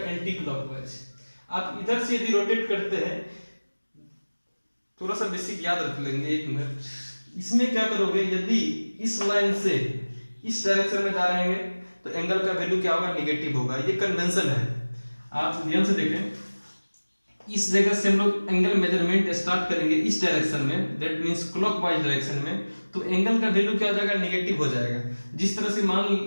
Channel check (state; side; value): inverted; both; correlation -1.00